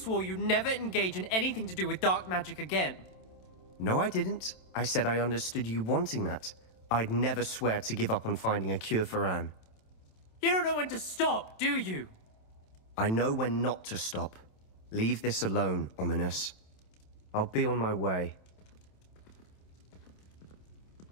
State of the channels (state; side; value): late; right; 27 ms